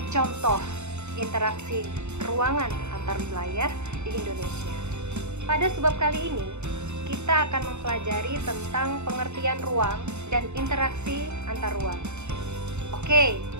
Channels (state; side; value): late; left; 0.82 ms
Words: contoh interaksi ruangan antar wilayah di Indonesia. Pada sebab kali ini, kita akan mempelajari tentang pengertian ruang dan interaksi antar ruang. Oke,